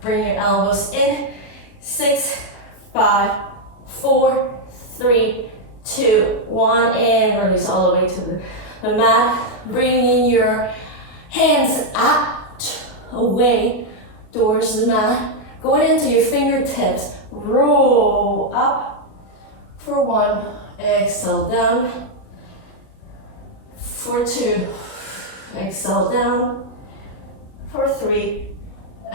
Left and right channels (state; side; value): late; right; 38 ms